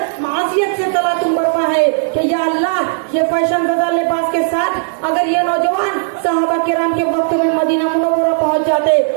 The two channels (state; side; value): silent; left; 66 dB below the other